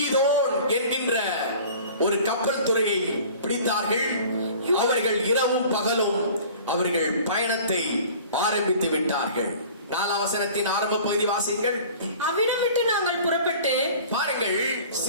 என்கின்ற ஒரு கப்பல் துறையை பிடித்தார்கள். அவர்கள் இரவும் பகலும் அவர்கள் பயணத்தை ஆரம்பித்து விட்டார்கள். 4 வசனத்தின் ஆரம்ப பகுதி வாசிங்கள். அவ்விடமிட்டு நாங்கள் புறப்பட்டு, பாருங்கள்,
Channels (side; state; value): both; inverted; correlation -0.45